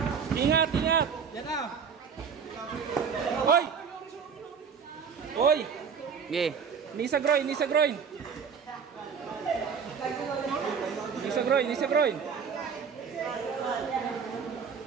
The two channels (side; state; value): left; quieter; 6.5 dB